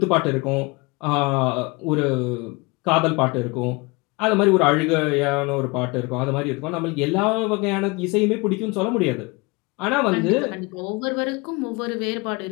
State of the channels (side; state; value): right; quieter; 26.1 dB